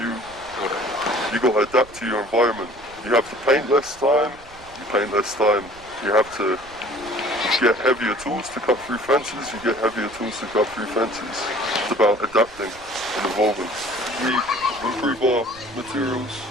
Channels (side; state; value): right; noise; rumble, 22 dB below the sound